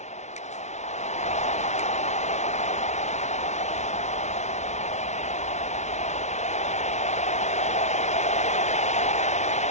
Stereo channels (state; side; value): late; right; 0.33 ms